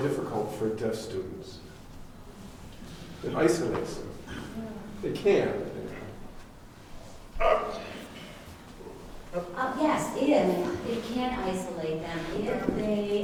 for deaf students. It isolates them. It can. Yes, if it can isolate them, if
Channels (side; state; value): both; identical; correlation 1.00